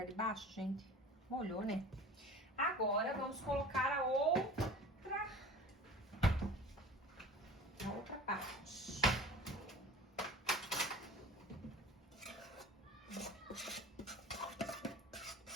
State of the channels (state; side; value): normal; both; correlation 0.40